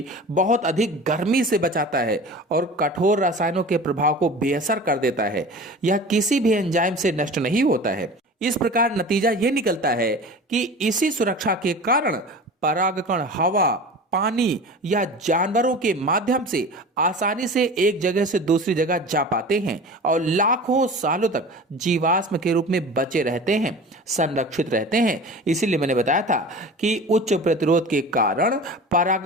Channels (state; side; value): normal; both; correlation 0.36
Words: बहुत अधिक गर्मी से बचाता है और कठोर रसायनों के प्रभाव को बेअसर कर देता है। यह किसी भी एंजाइम से नष्ट नहीं होता है। इस प्रकार नतीजा यह निकलता है कि इसी सुरक्षा के कारण परागकण हवा, पानी या जानवरों के माध्यम से आसानी से एक जगह से दूसरी जगह जा पाते हैं और लाखों सालों तक जीवाश्म के रूप में बचे रहते हैं, संरक्षित रहते हैं। इसीलिए मैंने बताया था कि उच्च प्रतिरोध के कारण